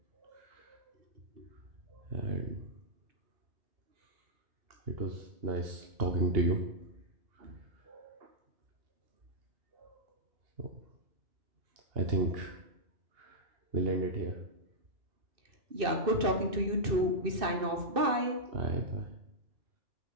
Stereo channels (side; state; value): left; late; 2.6 ms